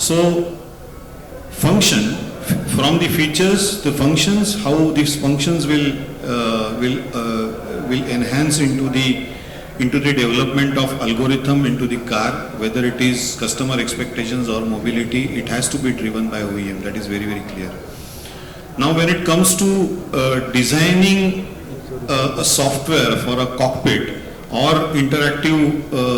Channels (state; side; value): identical; both; correlation 1.00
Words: function, from the features, the functions, how these functions will enhance into the development of algorithm into the car, whether it is customer expectations or mobility, it has to be driven by OEM. That is very, very clear. Now when it comes to designing a software for a cockpit, or interactive